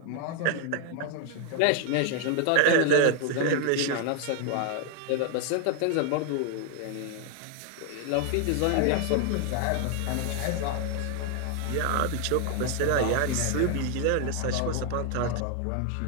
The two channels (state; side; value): different; both; correlation 0.00